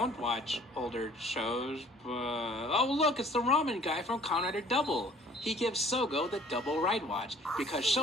watch older shows, but... Oh look, it's the ramen guy from Kamen Rider Double! He gives Sogo the double ride watch because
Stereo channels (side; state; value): both; normal; correlation 0.53